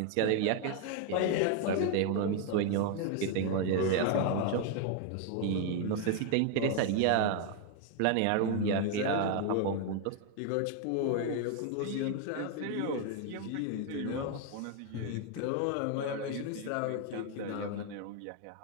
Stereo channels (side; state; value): both; different; correlation 0.01